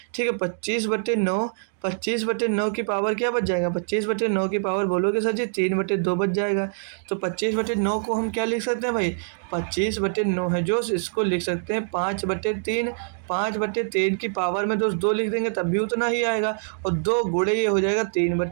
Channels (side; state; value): left; silent; digital silence